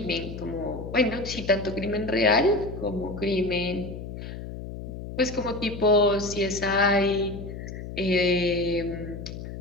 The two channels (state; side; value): noise; left; hum, 9 dB below the sound